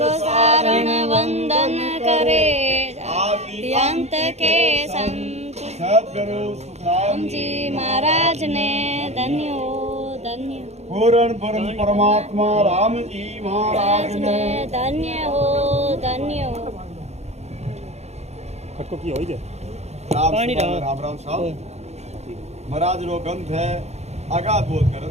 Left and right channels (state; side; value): late; left; 0.32 ms